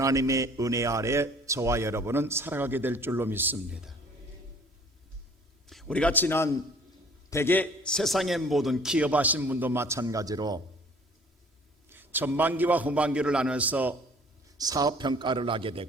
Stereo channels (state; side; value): normal; both; correlation 0.53